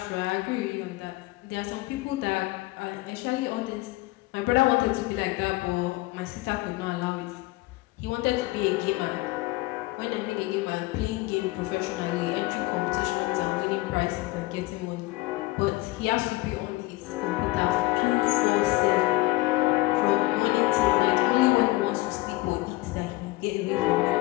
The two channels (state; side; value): quieter; right; 20.0 dB